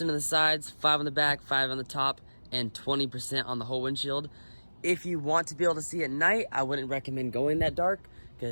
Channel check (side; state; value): both; inverted; correlation -1.00